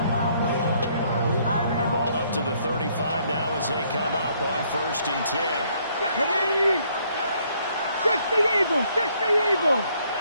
Ball up to the 35 now as they come up on 1st and 10. 60 Eagles! 60 Eagles!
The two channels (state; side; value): inverted; both; correlation -0.67